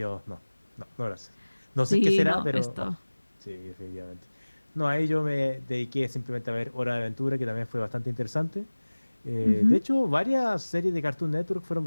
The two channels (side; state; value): both; inverted; correlation -1.00